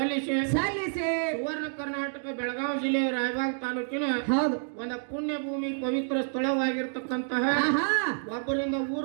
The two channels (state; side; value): silent; left; digital silence